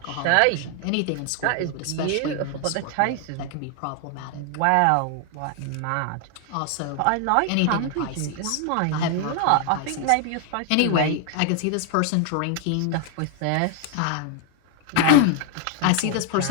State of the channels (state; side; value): different; both; correlation 0.00